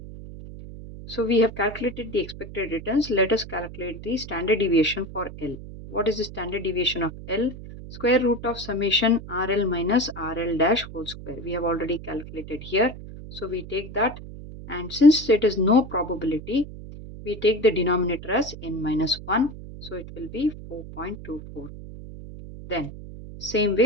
So we have calculated the expected returns. Let us calculate the standard deviation for L. What is the standard deviation of L? Square root of summation RL minus RL dash whole square. We have already calculated here. So we take that, and since it is no probability, we take the denominator as n minus 1. So it will be 4.24. Then same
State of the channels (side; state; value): right; noise; hum, 13 dB below the sound